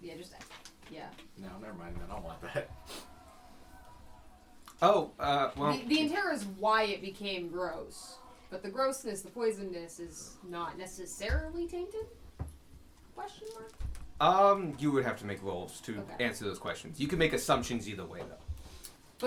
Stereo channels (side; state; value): both; identical; correlation 1.00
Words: Yeah, yeah. No, never mind. I don't want that. Oh, well. The Intera is why it became gross, but the grossness, the poisonness, is not necessarily tainted. Question mark. You would have to make rolls to answer those questions. You can make assumptions either way, though.